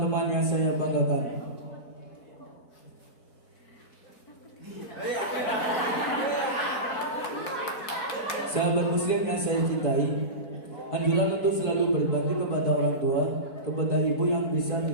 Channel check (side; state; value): right; late; 4.7 ms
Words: yang saya banggakan. Sahabat muslim yang saya cintai, anjuran untuk selalu berbakti kepada orang tua, kepada ibu yang bisa